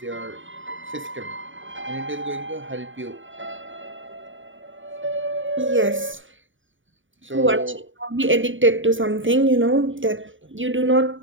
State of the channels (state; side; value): late; left; 0.56 ms